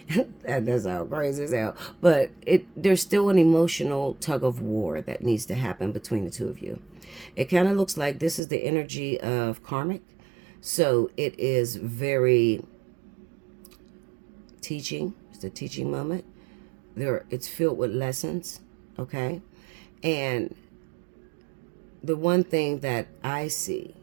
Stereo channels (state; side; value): drops out; left; at 8.4 s